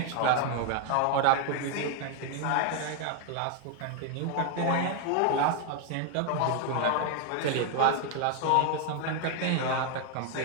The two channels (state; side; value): different; both; correlation 0.00